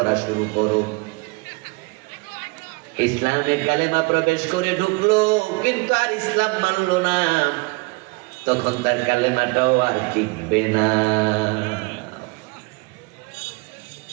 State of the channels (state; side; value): quieter; left; 26.9 dB